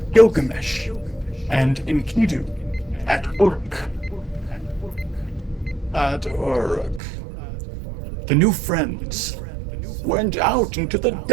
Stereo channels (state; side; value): drops out; left; at 7.0 s